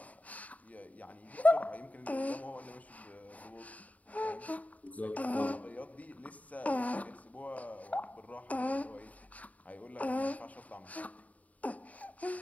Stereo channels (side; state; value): right; late; 0.071 ms